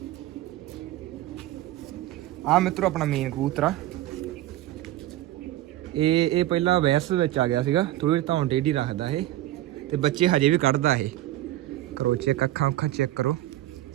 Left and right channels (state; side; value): quieter; left; 15.0 dB